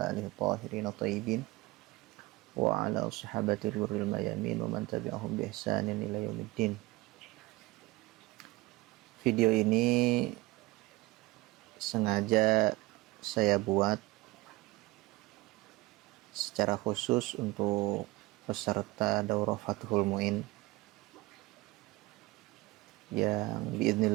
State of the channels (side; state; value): left; quieter; 20.9 dB